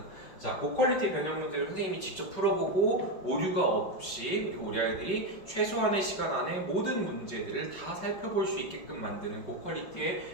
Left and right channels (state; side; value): late; right; 5.3 ms